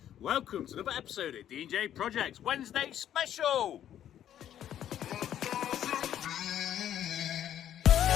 Welcome to another episode of D&J Projects Wednesday Special.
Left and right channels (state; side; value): quieter; right; 10.7 dB